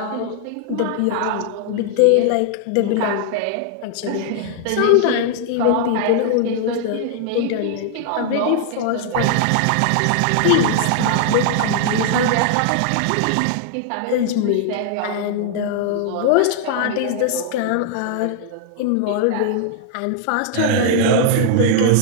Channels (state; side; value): different; both; correlation 0.00